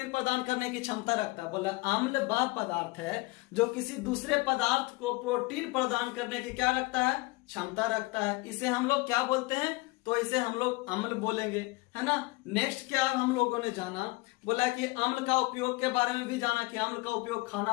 प्रदान करने की क्षमता रखता है। बोला अम्ल वह पदार्थ है जो किसी दूसरे पदार्थ को प्रोटीन प्रदान करने की क्या रखता है, क्षमता रखता है। इसे हम लोग क्या बोलते हैं, तो इसे हम लोग अम्ल बोलेंगे, है ना। नेक्स्ट क्या हम लोगों ने जाना, बोला कि अम्ल का उपयोग के बारे में भी जाना कि अम्ल का उपयोग खाना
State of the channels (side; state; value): right; quieter; 23.9 dB